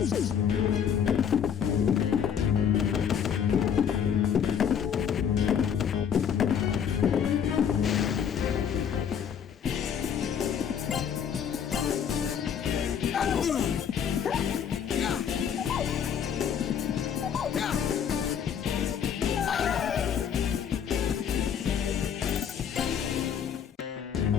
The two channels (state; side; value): quieter; right; 8.1 dB